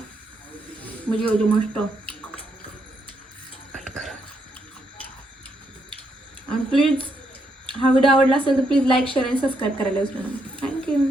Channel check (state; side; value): normal; both; correlation 0.77